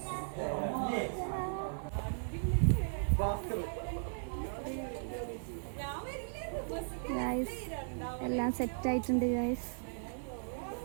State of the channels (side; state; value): left; silent; 53 dB below the other